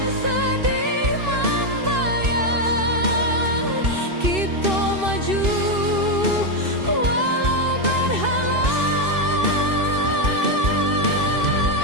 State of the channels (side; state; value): left; late; 2.6 ms